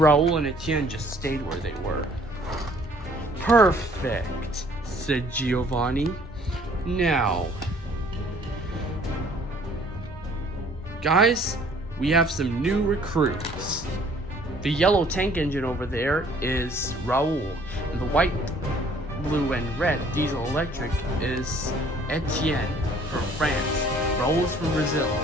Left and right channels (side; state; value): both; normal; correlation 0.57